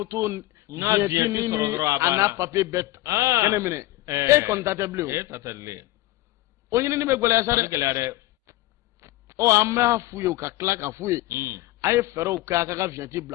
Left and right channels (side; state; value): right; quieter; 17.6 dB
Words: vienti ni a n'a papier bɛɛ kɛnɛ minɛ e kɔni ta tɛ bilen o ɲinini bɛ gɛlɛya sa dɛ an b'a f'u ye u ka tila ka f'u ye a ye fɛɛrɛw kɛ a ka vienti